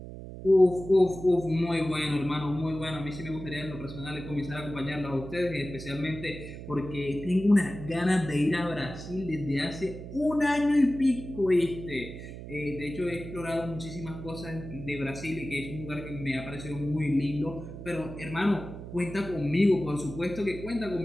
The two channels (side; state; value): right; noise; hum, 11 dB below the sound